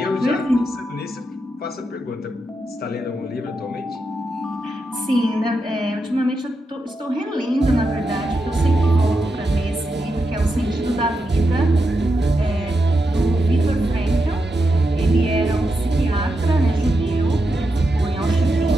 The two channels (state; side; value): normal; both; correlation 0.86